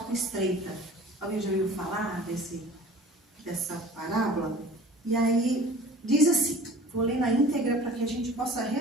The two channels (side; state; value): both; normal; correlation 0.45